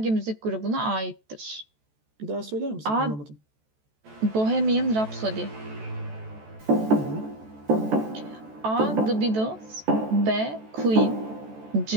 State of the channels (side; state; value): left; late; 14 ms